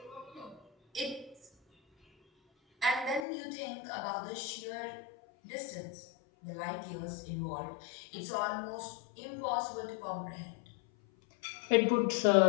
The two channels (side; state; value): right; drops out; at 3.2 s